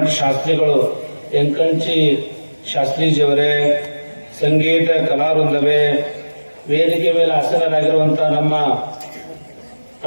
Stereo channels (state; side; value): inverted; both; correlation -1.00